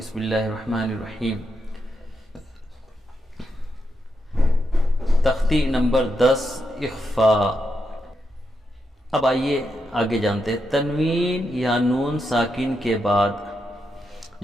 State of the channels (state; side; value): normal; both; correlation 0.83